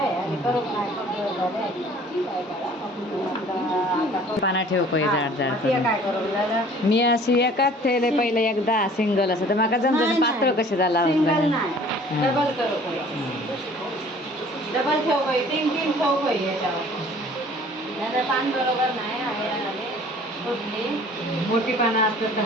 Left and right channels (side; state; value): both; normal; correlation 0.51